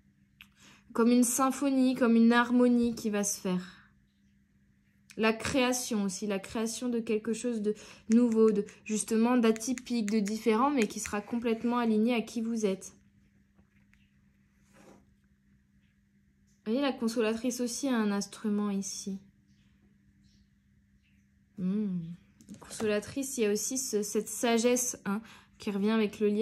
comme une symphonie, comme une harmonie qui va se faire. La création aussi, la création de quelque chose de nouveau, justement d'atypique, de différent, mais qui sera complètement aligné à qui vous êtes. Vous voyez, la consolatrice aussi a un instrument ici. Consolatrice, il y a aussi cette sagesse hein, qui revient avec le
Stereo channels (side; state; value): both; identical; correlation 1.00